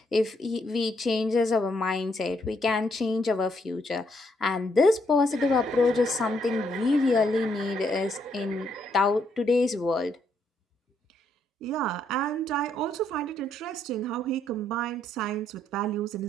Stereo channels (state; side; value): normal; both; correlation 0.74